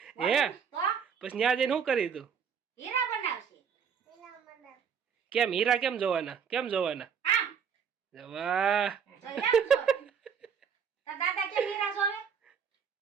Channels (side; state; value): left; quieter; 7.0 dB